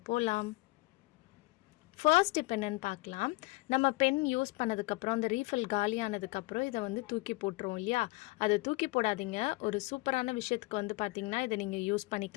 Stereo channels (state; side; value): quieter; right; 23.0 dB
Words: போலாம். ஃபர்ஸ்ட் இப்போ என்னென்னு பார்க்கலாம். நம்ம பென் யூஸ் பண்ணதுக்கப்புறம் அந்த ரீஃபில் காலியானதுக்கப்புறம் இதை வந்து தூக்கி போட்டுருவோம் இல்லையா? அதை தூக்கி போடாதீங்க. ஒரு சூப்பரான விஷயத்துக்கு வந்து பார்த்திங்கன்னா இதை நீங்கள் யூஸ்